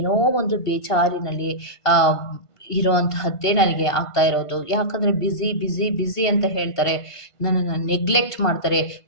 ಒಂದು ಬೇಜಾರಿನಲ್ಲಿ ಇರುವಂತಹದ್ದೇ ನನಗೆ ಆಗ್ತಾ ಇರೋದು. ಯಾಕಂದರೆ ಬ್ಯುಸಿ, ಬ್ಯುಸಿ, ಬ್ಯುಸಿ ಅಂತ ಹೇಳ್ತಾರೆ. ನನ್ನನ್ನು ನೆಗ್ಲೆಕ್ಟ್ ಮಾಡ್ತಾರೆ.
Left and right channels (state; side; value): late; right; 1.5 ms